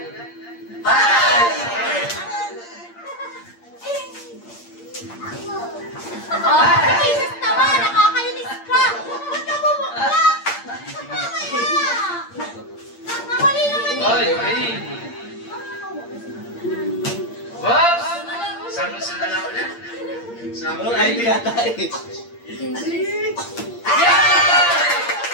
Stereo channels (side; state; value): right; late; 8.6 ms